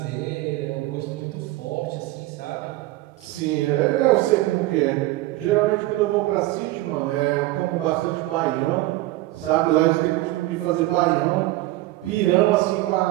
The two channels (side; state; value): left; quieter; 18.1 dB